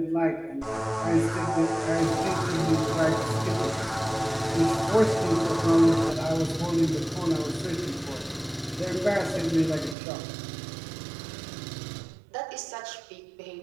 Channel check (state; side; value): drops out; left; at 10.0 s